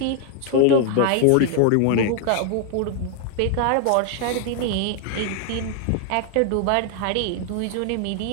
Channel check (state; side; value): different; both; correlation 0.00